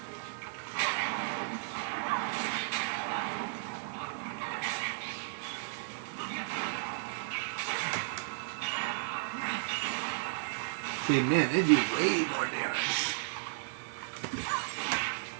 See, man, they do way more damage.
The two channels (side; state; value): left; silent; 55 dB below the other